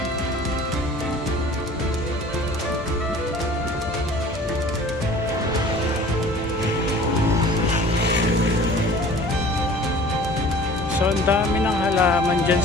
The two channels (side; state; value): both; normal; correlation 0.46